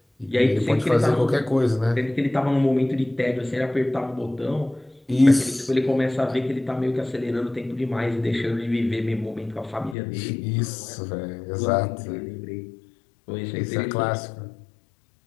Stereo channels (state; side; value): drops out; right; at 10.0 s